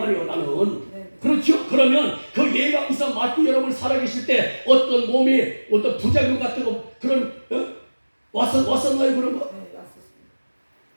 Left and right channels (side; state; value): both; inverted; correlation -1.00